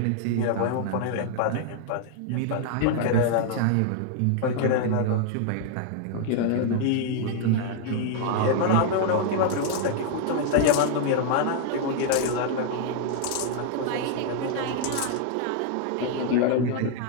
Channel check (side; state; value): both; different; correlation 0.00